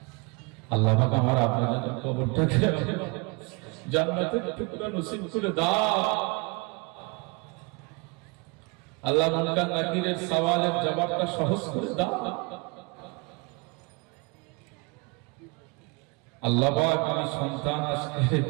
আল্লাহ পাক আমার আব্বাজানের কবরটাকে জান্নাতের টুকরা নসিব করে দাও। আল্লাহ মুনকার নাকিরের সওয়ালের জবাবটা সহজ করে দাও। আল্লাহ পাক আমি সন্তান আজকে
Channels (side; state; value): left; quieter; 29.4 dB